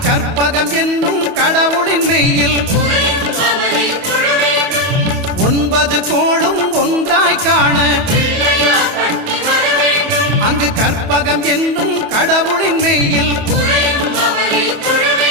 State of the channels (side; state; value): left; late; 28 ms